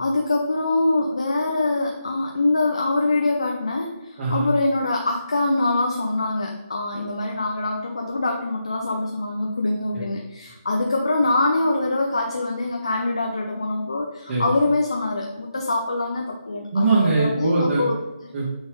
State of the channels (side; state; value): both; inverted; correlation -0.83